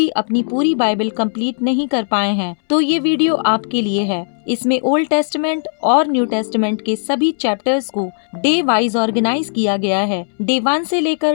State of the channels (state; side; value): silent; right; 66 dB below the other